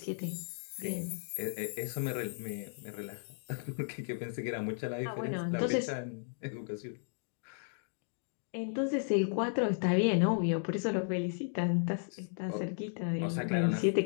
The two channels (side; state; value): right; silent; digital silence